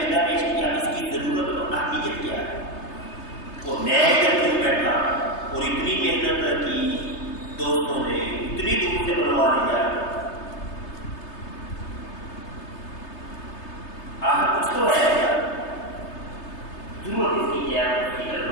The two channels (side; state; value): right; late; 3.3 ms